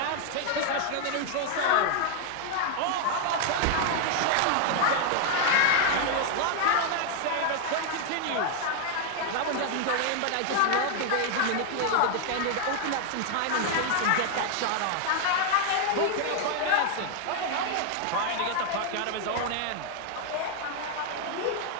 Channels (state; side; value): different; both; correlation 0.00